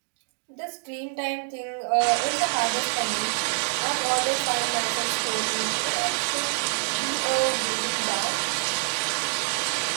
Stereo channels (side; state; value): left; silent; digital silence